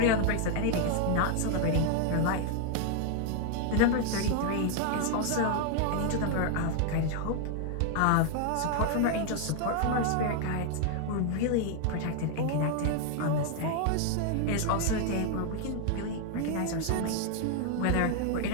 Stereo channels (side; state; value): both; different; correlation 0.00